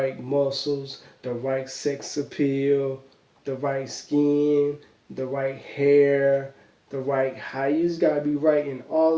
muscles, the right sex appeal, the right skin, the right hair, the right height. You just gotta be right in all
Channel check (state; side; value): identical; both; correlation 1.00